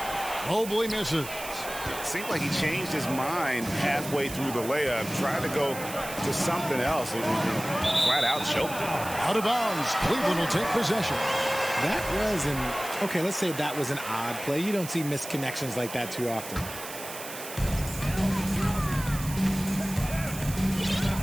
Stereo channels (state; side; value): noise; right; hiss, 11 dB below the sound